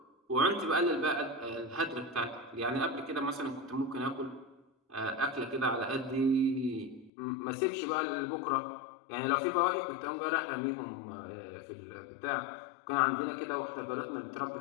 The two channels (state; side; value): drops out; right; at 7.1 s